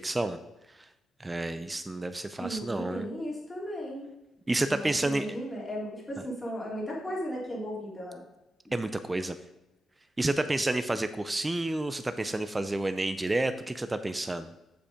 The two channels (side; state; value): both; normal; correlation 0.94